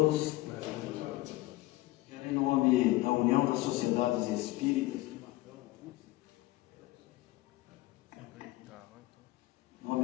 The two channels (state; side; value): quieter; right; 18.5 dB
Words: Em nome da União das Sociedades